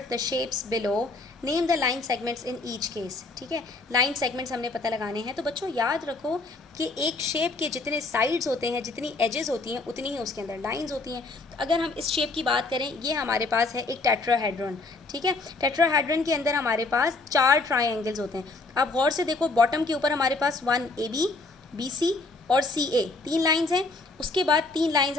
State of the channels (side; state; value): right; quieter; 3.5 dB